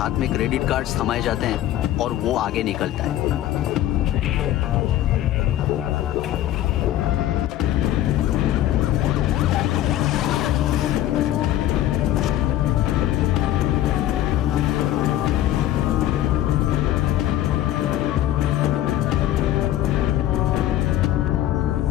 में क्रेडिट कार्ड्स थमाए जाते हैं और वो आगे निकलता है।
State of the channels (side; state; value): right; quieter; 13.1 dB